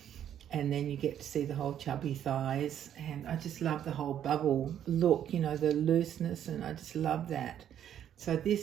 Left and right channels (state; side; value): quieter; left; 10.1 dB